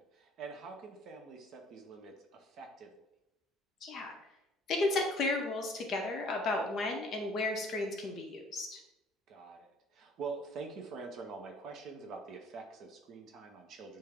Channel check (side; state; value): both; normal; correlation 0.56